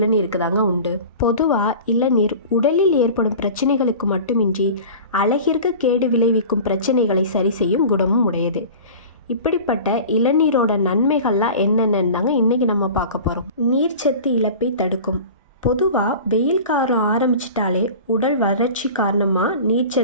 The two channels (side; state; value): both; inverted; correlation -0.37